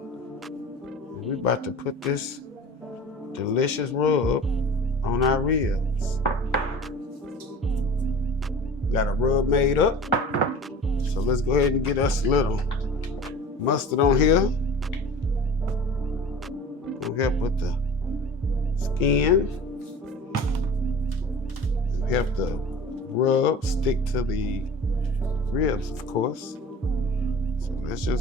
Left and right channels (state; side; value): normal; both; correlation 0.40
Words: And we're about to put this delicious rub on our ribs. Got a rub made up. So let's go ahead and get us a little mustard on here. Gonna help with the skin. Help the rub stick to the ribs, of course. So let's